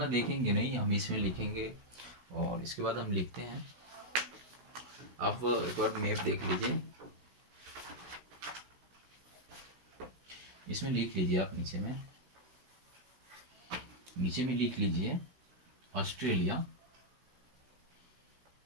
देखेंगे नहीं, हम इसमें लिखेंगे और इसके बाद हम लिखते हैं। आप एक बार मैप देख लीजिए, इसमें लिख लीजिए आप नीचे में लिख लीजिए ऑस्ट्रेलिया।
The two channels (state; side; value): late; left; 16 ms